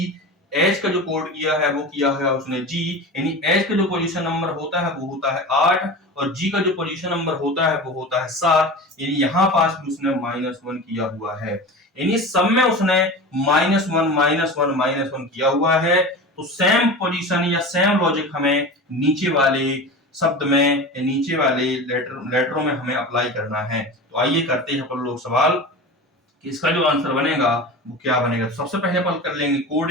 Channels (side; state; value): both; normal; correlation 0.31